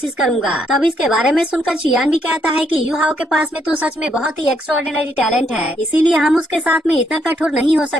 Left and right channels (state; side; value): normal; both; correlation 0.74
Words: करूंगा। तब इसके बारे में सुनकर चियान भी कहता है कि यू हाओ के पास में तो सच में बहुत ही एक्स्ट्राऑर्डिनरी टैलेंट है, इसीलिए हम उसके साथ में इतना कठोर नहीं हो